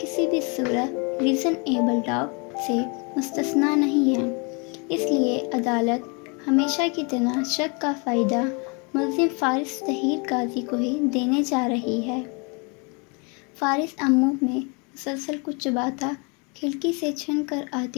بھی صورت ریزنیبل ڈاؤٹ سے مستثنیٰ نہیں ہیں۔ اس لیے عدالت ہمیشہ کی طرح شک کا فائدہ ملزم فارس طاہر قاضی کو ہی دینے جا رہی ہے۔ فارس امو میں مسلسل کچھ چباتا کھڑکی سے چھن کر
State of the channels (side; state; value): right; quieter; 32.5 dB